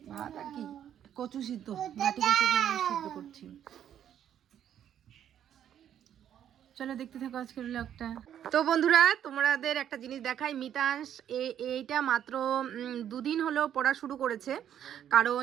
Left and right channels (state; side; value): quieter; left; 10.0 dB